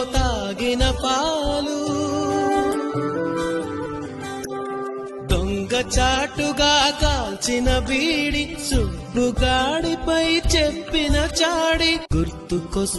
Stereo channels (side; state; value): both; identical; correlation 1.00